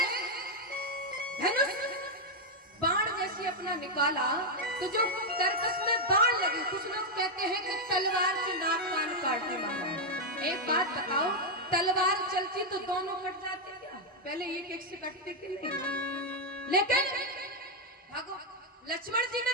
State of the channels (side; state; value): both; normal; correlation 0.00